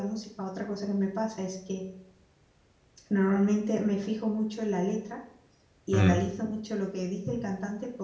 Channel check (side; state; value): both; identical; correlation 1.00